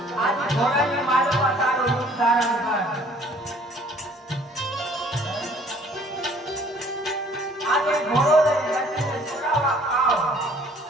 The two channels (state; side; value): normal; both; correlation 0.56